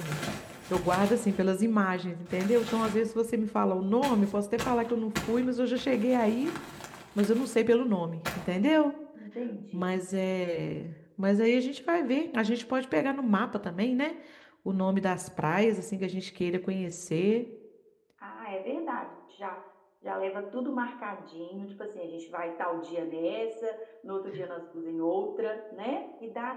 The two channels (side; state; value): both; identical; correlation 1.00